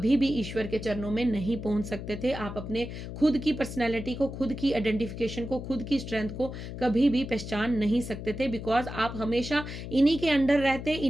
भी ईश्वर के चरणों में नहीं पहुंच सकते थे। आप अपने खुद की पर्सनैलिटी को, खुद की आइडेंटिफिकेशन को, खुद की स्ट्रेंथ को कभी भी पहचान नहीं सकते थे, बिकॉज आप हमेशा इन्हीं के अंडर रहते,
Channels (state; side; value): noise; left; hum, 9 dB below the sound